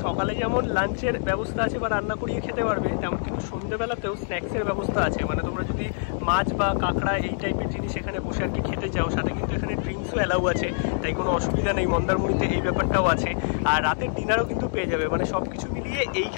সকালে যেমন লাঞ্চের ব্যবস্থা আছে বা রান্না করিয়ে খেতে পারবে, তেমন কিন্তু সন্ধ্যেবেলাতেও স্ন্যাক্সের ব্যবস্থা আছে। মানে তোমরা যদি মাছ বা কাঁকড়া এই টাইপের জিনিস এখানে বসে আর কি খেতে চাও, সাথে কিন্তু এখানে ড্রিঙ্কসও অ্যালাউ আছে, তাই কোনো অসুবিধা নেই। মন্দারমণিতে এই ব্যাপারটাও আছে। আর রাতের ডিনারও কিন্তু পেয়ে যাবে, মানে সব কিছু মিলিয়ে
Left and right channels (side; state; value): right; silent; digital silence